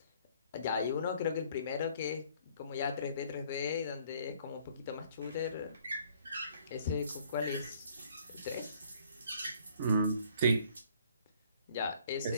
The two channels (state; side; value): inverted; both; correlation -0.60